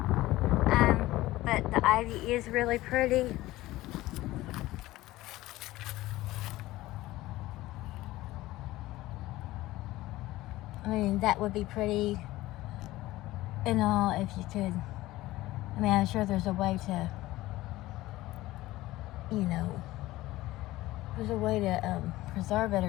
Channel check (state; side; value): quieter; right; 17.3 dB